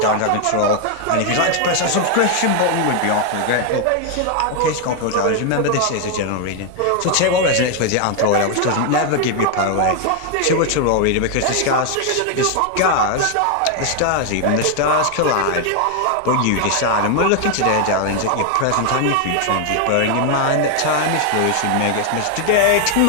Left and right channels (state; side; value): different; both; correlation 0.01